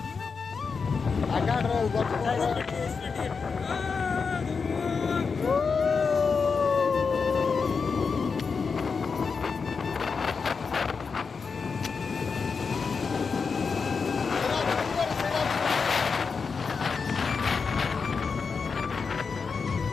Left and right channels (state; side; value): quieter; right; 5.2 dB